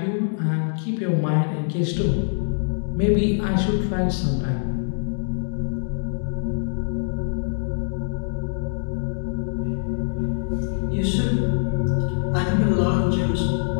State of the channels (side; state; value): right; silent; digital silence